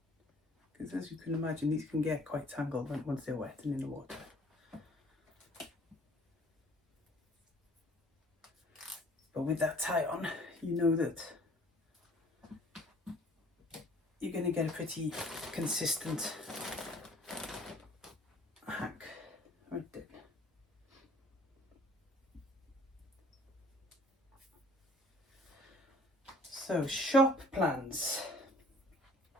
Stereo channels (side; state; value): both; normal; correlation 0.54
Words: Because as you can imagine, these can get quite tangled once they're wet and in the water. But with that tie on, you know that you're going to get a pretty consistent hack right there. So, shop plans.